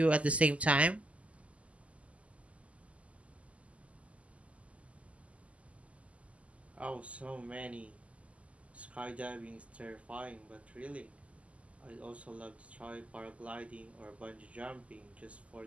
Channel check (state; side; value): late; left; 0.065 ms